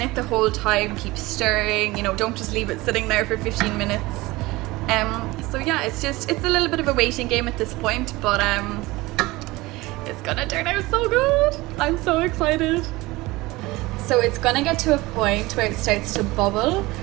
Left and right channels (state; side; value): quieter; left; 20.7 dB